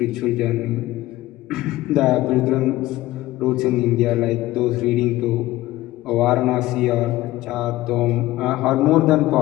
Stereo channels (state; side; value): quieter; right; 16.9 dB